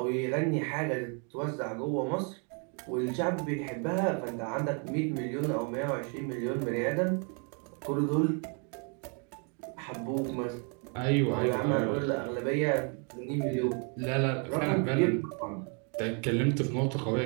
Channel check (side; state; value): left; quieter; 38.5 dB